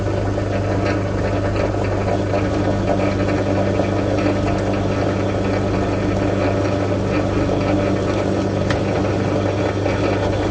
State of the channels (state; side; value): identical; both; correlation 1.00